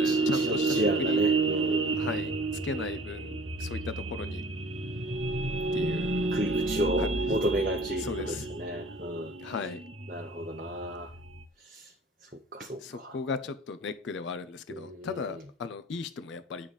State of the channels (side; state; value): both; normal; correlation 0.47